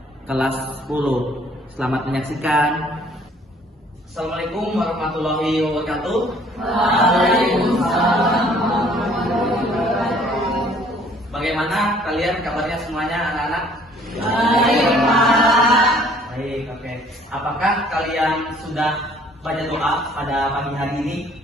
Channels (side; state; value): both; normal; correlation 0.58